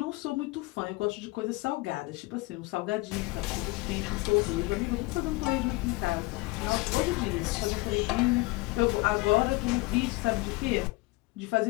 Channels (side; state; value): right; quieter; 23.2 dB